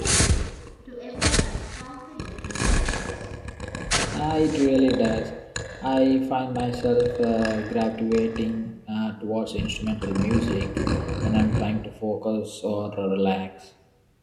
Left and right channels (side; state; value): both; identical; correlation 1.00